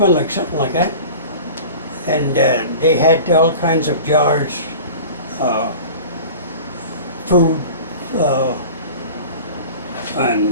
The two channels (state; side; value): inverted; both; correlation -0.38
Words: like something like that. And they had all kinds of jars, food,